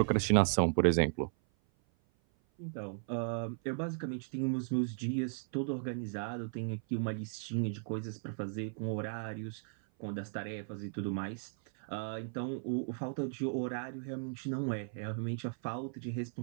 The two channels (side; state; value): left; silent; 54 dB below the other